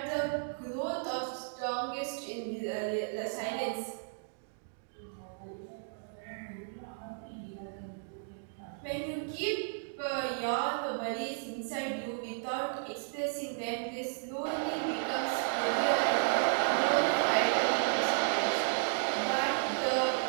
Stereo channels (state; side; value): silent; left; digital silence